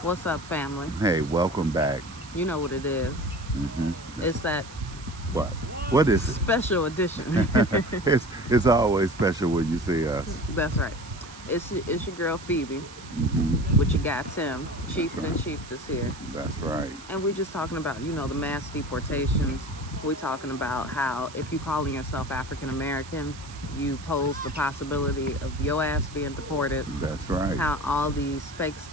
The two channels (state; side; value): noise; right; hiss, 17 dB below the sound